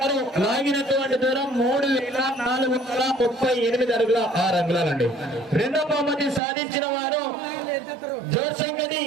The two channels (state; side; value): drops out; left; at 6.4 s